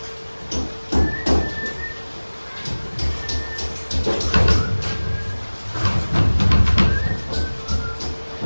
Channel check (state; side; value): inverted; both; correlation -1.00